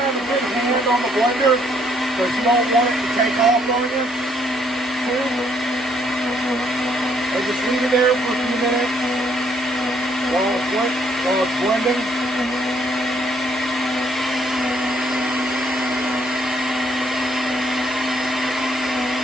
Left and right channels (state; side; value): normal; both; correlation 0.68